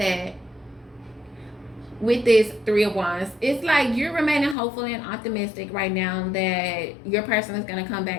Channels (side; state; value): right; drops out; at 4.5 s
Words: with this Three of Wands, it's like you're remaining hopeful and optimistic right now that your person is going to come